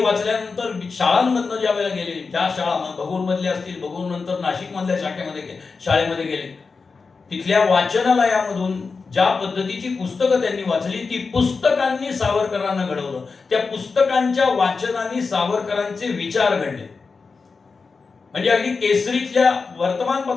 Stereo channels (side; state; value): right; quieter; 4.6 dB